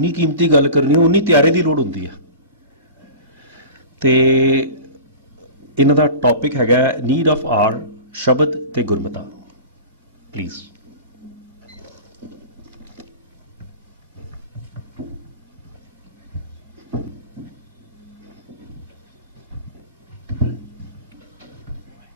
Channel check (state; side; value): inverted; both; correlation -0.35